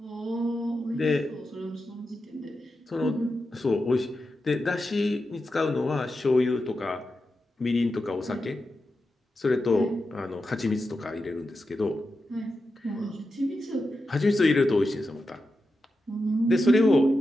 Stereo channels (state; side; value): normal; both; correlation 0.89